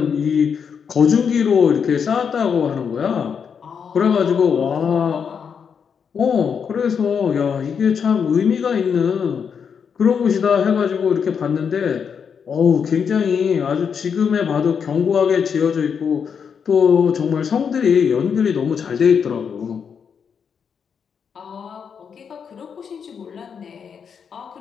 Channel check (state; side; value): quieter; right; 6.8 dB